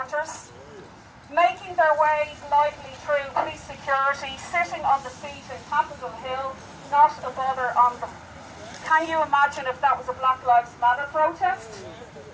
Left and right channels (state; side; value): identical; both; correlation 1.00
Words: making their way lightly through police security, sitting on the seat in Capitol Hill, not a bother on them. Can you imagine if that was a Black Lives Matter protest?